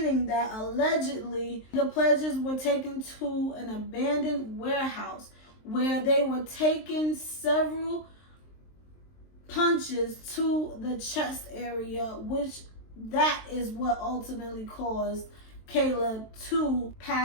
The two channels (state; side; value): late; right; 23 ms